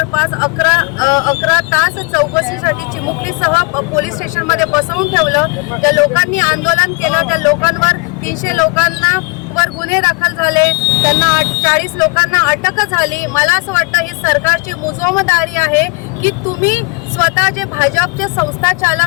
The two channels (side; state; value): right; quieter; 29.1 dB